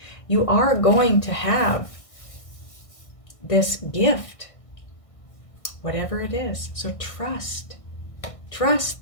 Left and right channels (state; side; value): late; right; 1.5 ms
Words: You are going to have this gift, whatever it is. So trust. Trust